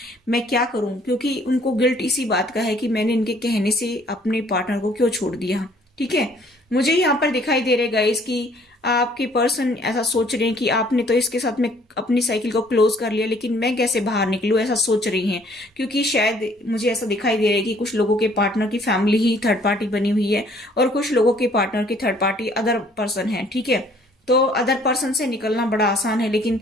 मैं क्या करूं, क्योंकि उनको गिल्ट इसी बात का है कि मैंने इनके कहने से अपने पार्टनर को क्यों छोड़ दिया। ठीक है, मुझे यहाँ पर दिखाई दे रहे गाइस कि आपके पर्सन ऐसा सोच रहे हैं कि आपने तो इसके साथ में अपनी साइकिल को क्लोज कर लिया, लेकिन मैं कैसे बाहर निकलूं, ऐसा सोच रही हैं। क्योंकि शायद मुझे ऐसा दिखाई दे रहा है कि कुछ लोगों के पार्टनर की फैमिली ही थर्ड पार्टी बनी हुई है, और कुछ लोगों के पार्टनर की थर्ड पार्टी अदर पर्सन है। ठीक है, तो अदर पर्सन से निकलना बड़ा आसान है, लेकिन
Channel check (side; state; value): both; normal; correlation 0.60